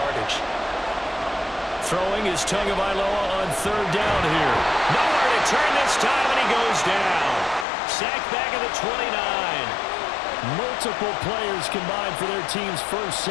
Throwing is Tagovailoa on 3rd down here. Nowhere to turn this time, and he goes down. Sacked back at the 29. Multiple players combined for their team's first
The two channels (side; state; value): right; drops out; at 7.7 s